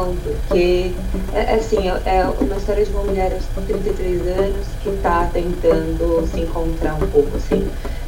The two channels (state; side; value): identical; both; correlation 1.00